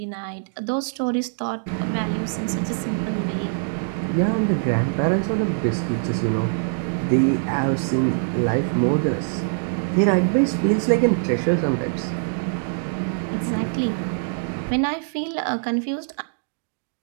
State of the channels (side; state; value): left; silent; digital silence